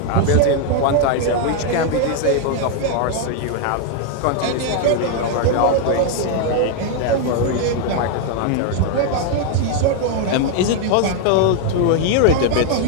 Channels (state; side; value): different; both; correlation 0.00